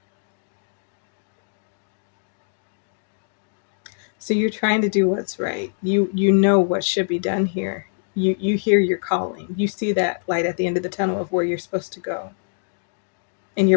so you're trying to do what's right. You know what should be done here. You hear your calling. You see that light at the end of the tunnel of where you're supposed to go. And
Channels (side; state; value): right; silent; digital silence